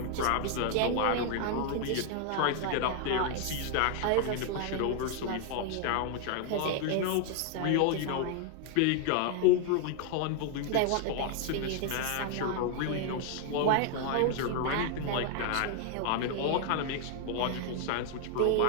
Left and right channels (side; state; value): both; different; correlation 0.00